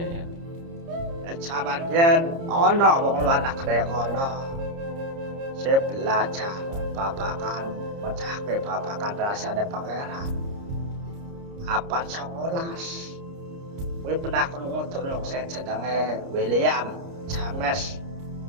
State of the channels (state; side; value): late; left; 30 ms